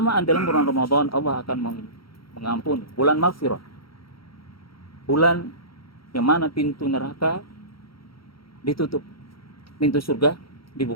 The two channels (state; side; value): late; right; 0.74 ms